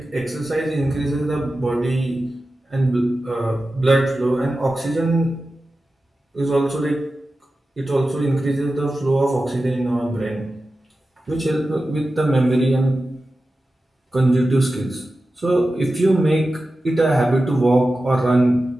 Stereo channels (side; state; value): both; normal; correlation 0.94